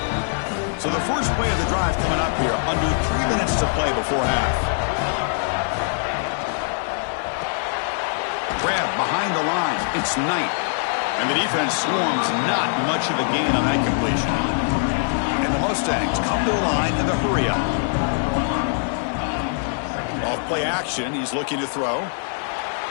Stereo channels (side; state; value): right; silent; 64 dB below the other